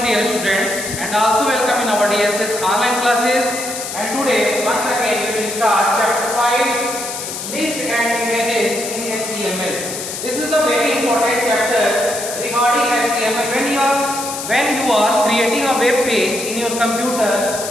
dear students and also welcome in our DSS online classes, and today once again we will start chapter 5 list and images in HTML. This is the very important chapter regarding HTML. When you are creating a web page in your computer,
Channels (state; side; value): noise; left; hiss, 7 dB below the sound